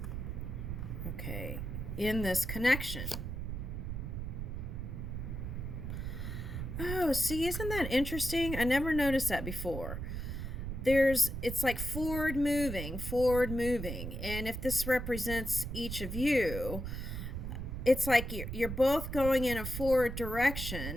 Okay. In this connection. Oh, see, isn't that interesting? I never noticed that before. It's like forward moving. And if this represents each of you, it's like you're both going in a forward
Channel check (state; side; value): noise; right; rumble, 5 dB below the sound